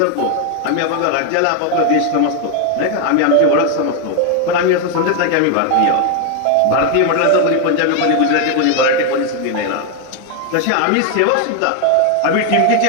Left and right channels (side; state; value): both; different; correlation 0.01